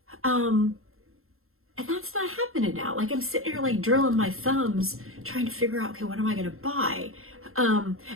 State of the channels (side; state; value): left; late; 0.62 ms